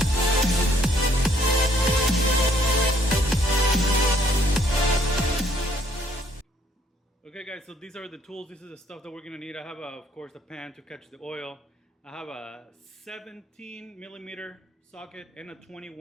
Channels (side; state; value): both; normal; correlation 0.66